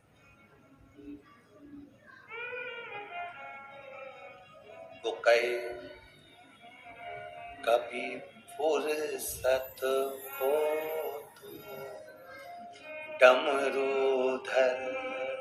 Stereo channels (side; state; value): both; identical; correlation 1.00